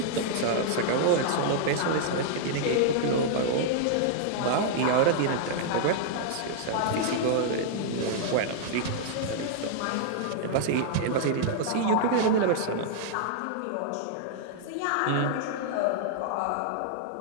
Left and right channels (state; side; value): different; both; correlation -0.01